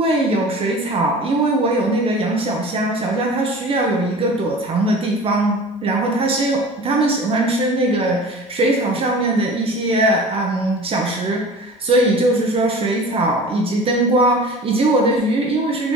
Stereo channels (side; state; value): both; normal; correlation 0.40